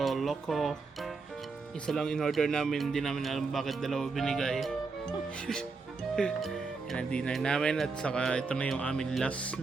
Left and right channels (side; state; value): left; quieter; 4.3 dB